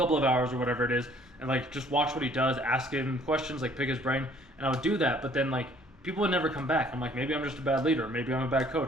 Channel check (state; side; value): normal; both; correlation 0.58